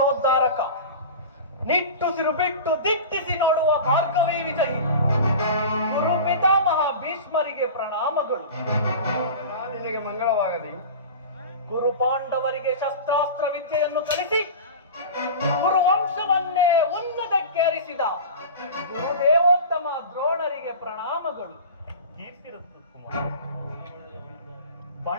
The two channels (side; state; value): both; inverted; correlation -0.32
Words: ನಿಟ್ಟುಸಿರು ಬಿಟ್ಟು ದಿಟ್ಟಿಸಿ ನೋಡುವ ಭಾರ್ಗವಿ ವಿಜಯಿ ಗುರು ಪಿತಾಮಹ ಭೀಷ್ಮರಿಗೆ ಪ್ರಣಾಮಗಳು. ನಿನಗೆ ಮಂಗಳವಾಗಲಿ. ಗುರು ಪಾಂಡವರಿಗೆ ಶಸ್ತ್ರಾಸ್ತ್ರ ವಿದ್ಯೆಯನ್ನು ಕಲಿಸಿ ಗುರುವಂಶವನ್ನೇ ಉನ್ನತಕ್ಕೇರಿಸಿದ ಗುರುದೇವೋತ್ತಮ ದ್ರೋಣರಿಗೆ ಪ್ರಣಾಮಗಳು.